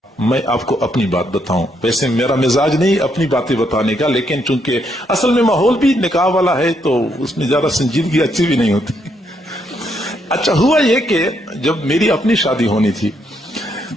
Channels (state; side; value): normal; both; correlation 0.75